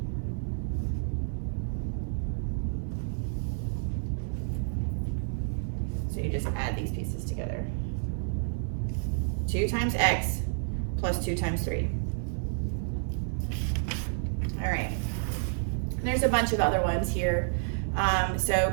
So you just add these pieces together. 2 times x plus 2 times 3. All right. And there's a bunch of other ones here. So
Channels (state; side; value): silent; left; digital silence